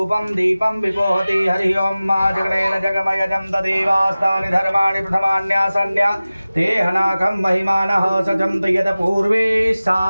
दीपं विपोहति। हरि ओं मा जगनेन जगमयजं तदेवास्तानि धर्माणि प्रथमान्यासन्या ते हनाकं महिमानः सजन्त यत् पूर्वे सा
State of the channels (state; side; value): inverted; both; correlation -0.97